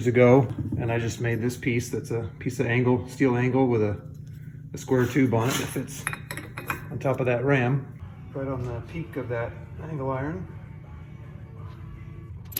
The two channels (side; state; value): both; identical; correlation 1.00